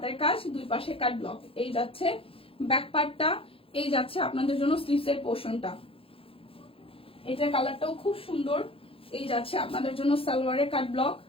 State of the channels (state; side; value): late; right; 0.27 ms